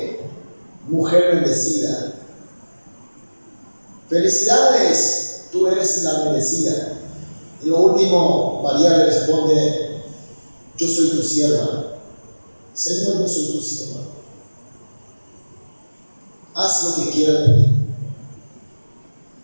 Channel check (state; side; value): inverted; both; correlation -1.00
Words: mujer bendecida. Felicidades, tú eres la bendecida. Y lo último, María le responde, yo soy tu sierva. Señor, yo soy tu sierva. Haz lo que quieras de mí.